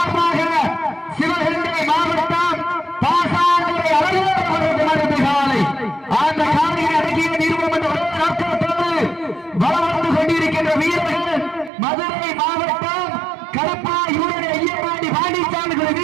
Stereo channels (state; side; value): drops out; left; at 11.7 s